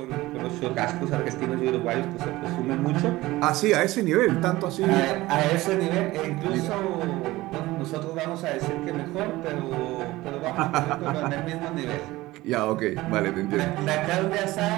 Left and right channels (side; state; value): left; quieter; 18.5 dB